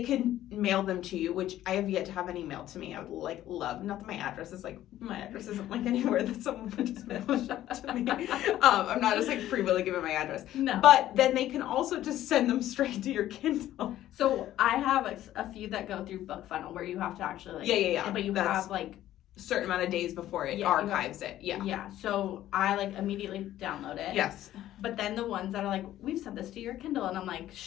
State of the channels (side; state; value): right; quieter; 13.3 dB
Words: can mail them to you, which I have yet to have any mailed to me. I would love, not that my address isn't like anywhere that someone would just mail shit to me. I'm not just like free willy giving my address. No. But then they can also just send them straight to your Kindle. So I have a few that go through BookFunnel where you have to actually But you have like certain amount of days before it archives it. Yeah. Yeah. So I immediately download it. Yes. But then the ones that are like, we've sent this to your Kindle, and I'm like